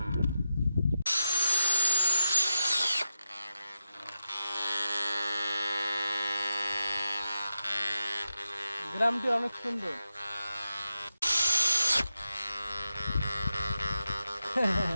গ্রামটি অনেক সুন্দর।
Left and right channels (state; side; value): inverted; both; correlation -0.91